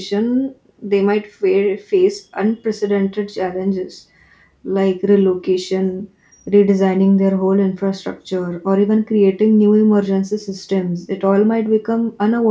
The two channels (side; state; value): both; identical; correlation 1.00